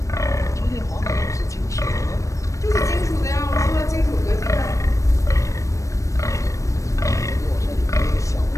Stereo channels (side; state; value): right; late; 0.15 ms